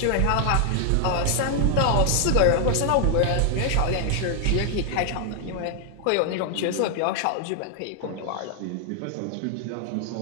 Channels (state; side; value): different; both; correlation 0.00